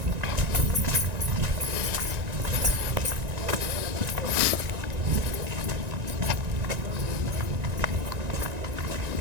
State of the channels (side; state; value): left; late; 1.9 ms